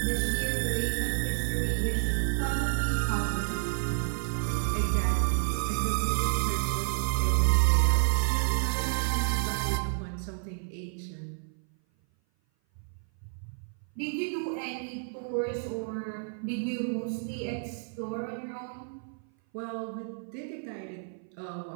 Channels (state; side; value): silent; left; 56 dB below the other